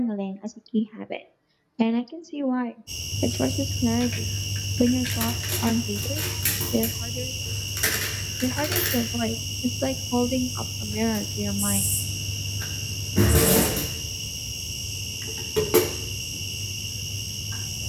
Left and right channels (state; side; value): identical; both; correlation 1.00